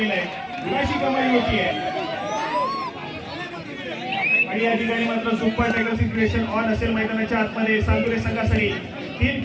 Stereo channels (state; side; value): identical; both; correlation 1.00